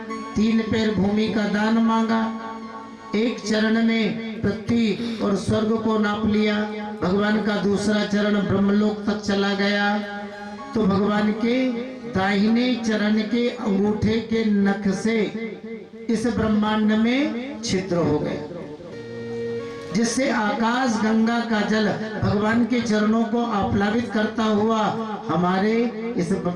3 पैर भूमि का दान मांगा, एक चरण में पृथ्वी और स्वर्ग को नाप लिया, भगवान का दूसरा चरण ब्रह्मलोक तक चला गया, तो भगवान के दाहिने चरण के अंगूठे के नख से इस ब्रह्मांड में छिद्र हो गए, जिससे आकाश गंगा का जल भगवान के चरणों को आप्लावित करता हुआ हमारे इस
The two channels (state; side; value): identical; both; correlation 1.00